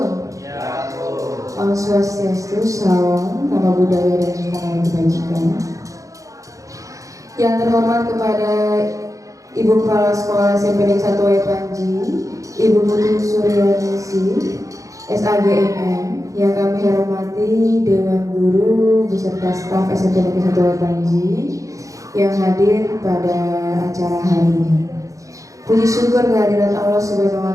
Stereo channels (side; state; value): left; late; 0.16 ms